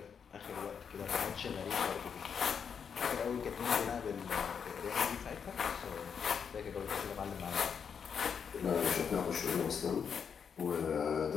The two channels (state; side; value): quieter; right; 6.9 dB